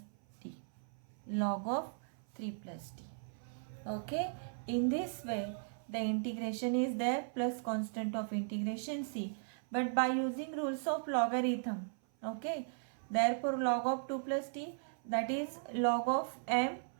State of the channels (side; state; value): left; silent; 53 dB below the other